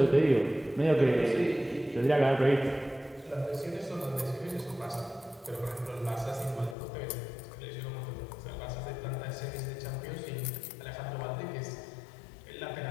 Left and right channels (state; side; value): drops out; right; at 6.8 s